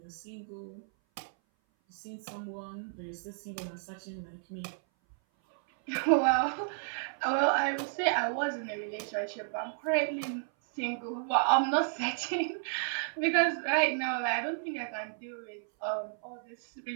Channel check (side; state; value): left; silent; 56 dB below the other